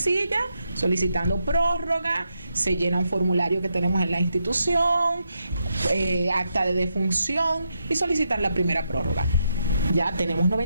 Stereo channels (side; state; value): both; inverted; correlation -0.82